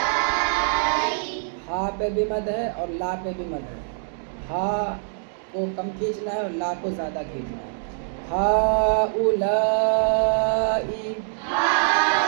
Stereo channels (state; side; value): silent; left; digital silence